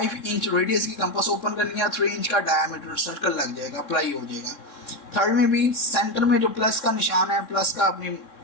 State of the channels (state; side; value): late; right; 3.7 ms